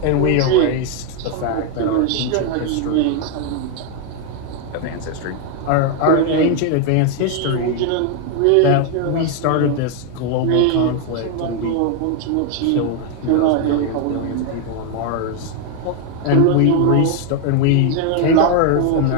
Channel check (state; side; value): different; both; correlation 0.00